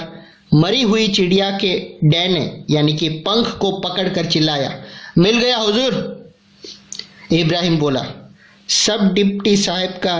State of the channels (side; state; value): both; identical; correlation 1.00